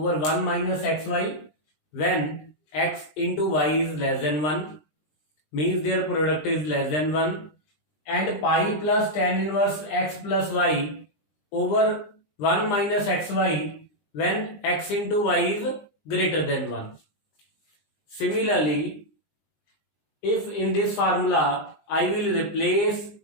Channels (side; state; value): right; late; 20 ms